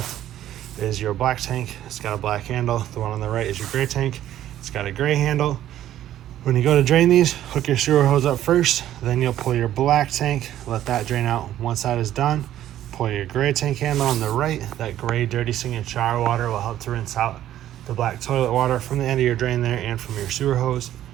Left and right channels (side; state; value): left; quieter; 12.4 dB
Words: is your black tank. It's got a black handle. The one on the right is your gray tank. It's got a gray handle. When you go to drain these, hook your sewer hose up first, then you'll pull your black tank, let that drain out. Once that is done, pull your gray tank handle on the right. That gray dirty singing shower water will help to rinse out the black toilet water from the end of your drain there and from your sewer hose.